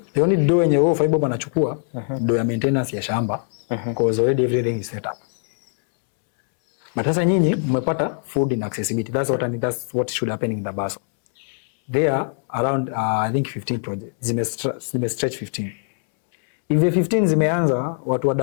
the only do yenye wewe 5 bob anachukua do ya maintenance ya shamba. Cause already everything is set up. But sasa nyinyi mmepata food in accessibility. That's what should happen in Dabaso. There are around I think 15 projects. Zime stretch 15. If the 15 zimeanza, watu wa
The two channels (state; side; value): silent; right; 64 dB below the other